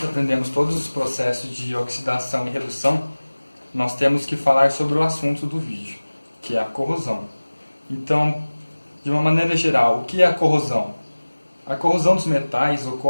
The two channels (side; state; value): both; inverted; correlation -1.00